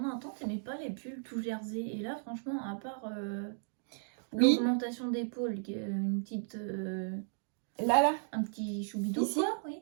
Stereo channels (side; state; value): left; silent; digital silence